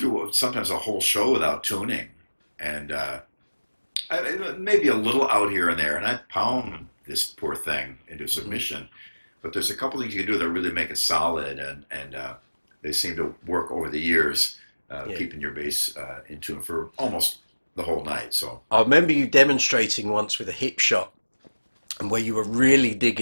sometimes a whole show without tuning, and maybe a little out here and there, and I pound this poor thing into submission. Mm-hmm. But there's a couple things you can do that really make it solid, and they seem to work over the years, keeping your bass in tune for almost the whole night. So I remember you demonstrating once with a Hipshot, and where you were really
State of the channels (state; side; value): inverted; both; correlation -1.00